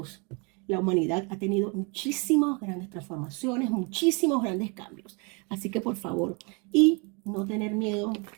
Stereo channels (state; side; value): quieter; left; 32.4 dB